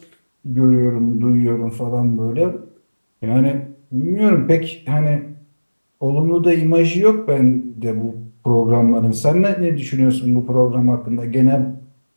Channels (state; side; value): inverted; both; correlation -1.00